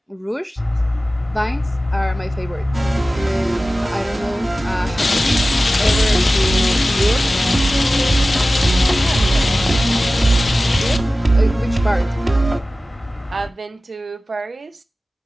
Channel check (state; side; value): normal; both; correlation 0.96